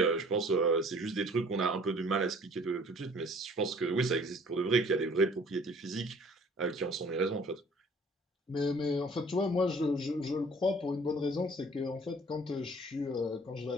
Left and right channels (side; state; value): both; normal; correlation 0.53